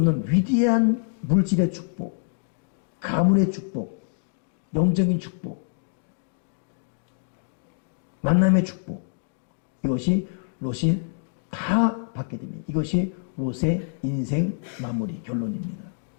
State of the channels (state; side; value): silent; right; digital silence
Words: 위대한 물질의 축복, 가문의 축복, 영적인 축복, 만남의 축복, 이것이 롯이 다 받게 됩니다. 이것이 롯의 인생 마무리 결론입니다.